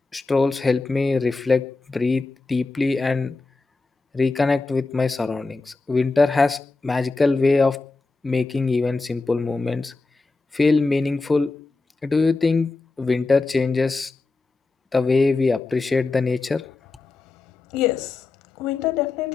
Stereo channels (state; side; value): quieter; right; 3.7 dB